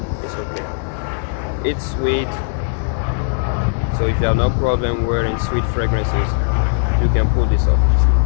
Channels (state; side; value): silent; right; digital silence